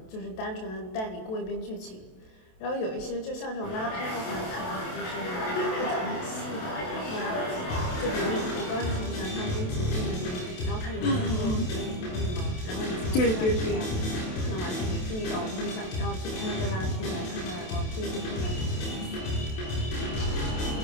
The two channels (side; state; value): right; late; 27 ms